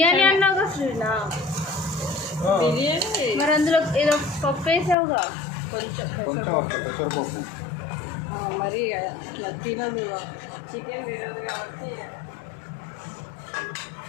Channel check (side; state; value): right; drops out; at 5.0 s